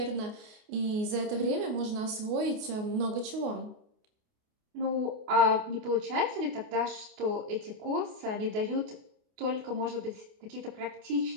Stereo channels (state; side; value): late; left; 28 ms